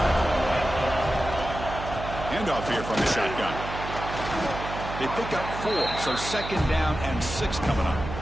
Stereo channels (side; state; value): right; noise; hum, 8 dB below the sound